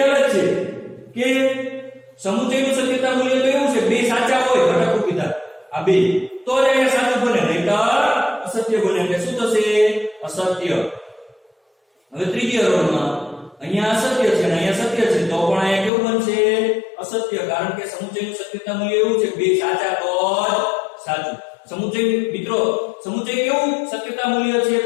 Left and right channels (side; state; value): right; drops out; at 15.9 s